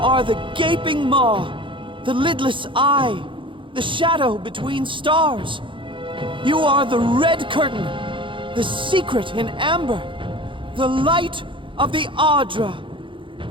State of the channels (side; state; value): left; late; 0.24 ms